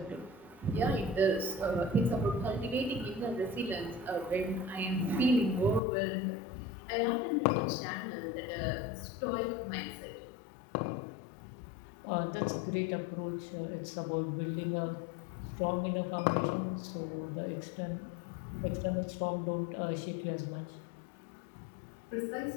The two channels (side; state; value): right; drops out; at 5.8 s